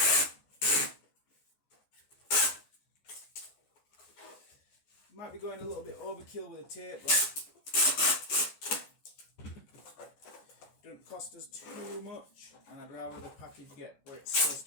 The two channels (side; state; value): right; late; 14 ms